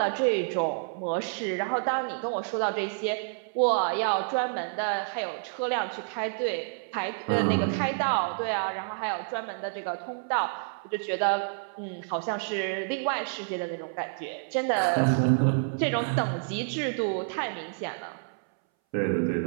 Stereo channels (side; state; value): left; silent; 59 dB below the other